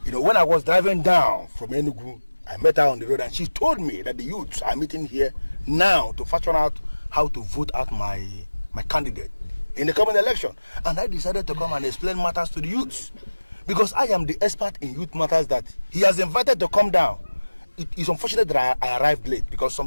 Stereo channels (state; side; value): inverted; both; correlation -1.00